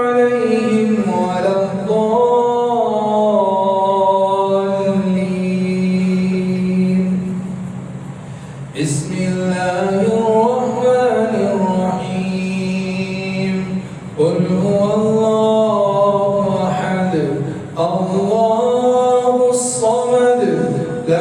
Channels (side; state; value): both; identical; correlation 1.00